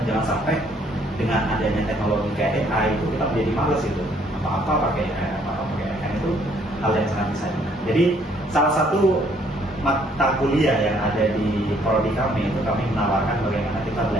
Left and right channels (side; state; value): both; normal; correlation 0.65